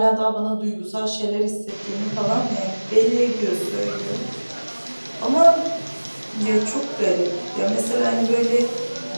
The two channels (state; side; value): inverted; both; correlation -1.00